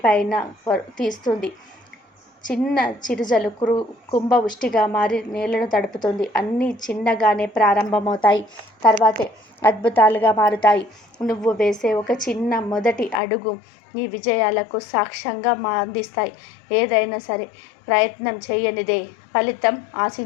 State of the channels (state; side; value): drops out; right; at 13.2 s